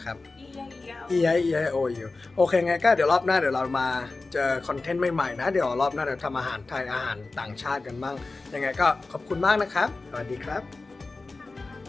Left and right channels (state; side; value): quieter; right; 3.6 dB